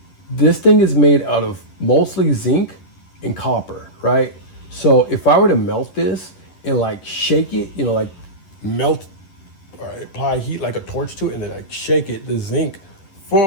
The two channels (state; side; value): late; right; 11 ms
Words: this thing is made out of mostly zinc and copper, right? So if I were to melt this and like shake it, you know, like melt, apply heat like a torch to it and then like shake it, the zinc, for